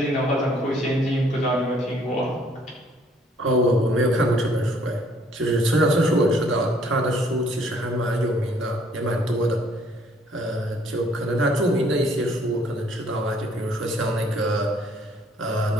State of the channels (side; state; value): both; normal; correlation 0.62